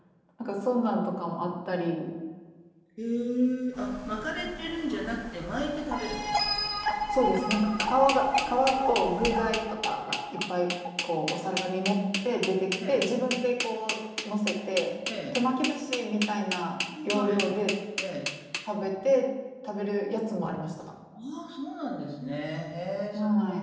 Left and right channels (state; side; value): identical; both; correlation 1.00